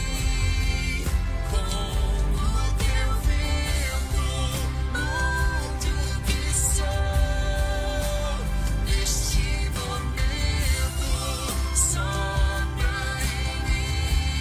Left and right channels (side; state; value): both; identical; correlation 1.00